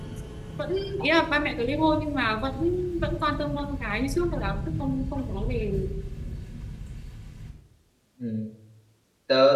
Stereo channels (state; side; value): identical; both; correlation 1.00